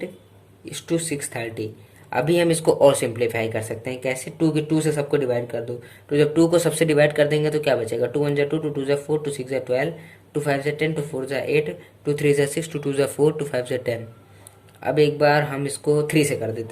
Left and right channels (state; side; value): identical; both; correlation 1.00